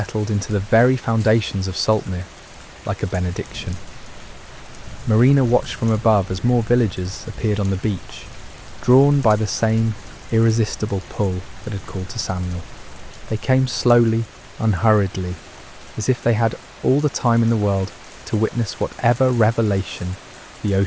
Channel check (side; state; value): both; identical; correlation 1.00